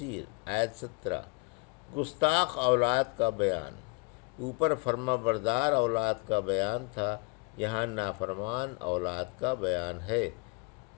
آیت 17: گستاخ اولاد کا بیان۔ اوپر فرما بردار اولاد کا بیان تھا، یہاں نافرمان اولاد کا بیان ہے۔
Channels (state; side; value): quieter; right; 29.9 dB